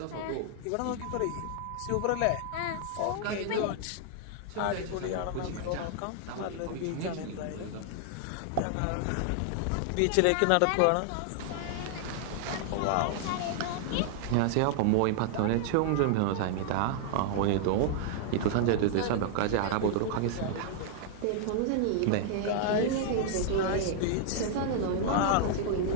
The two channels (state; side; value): different; both; correlation -0.01